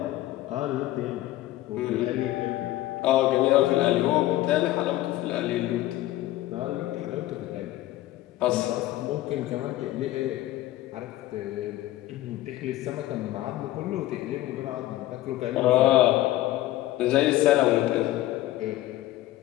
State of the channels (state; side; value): quieter; right; 15.6 dB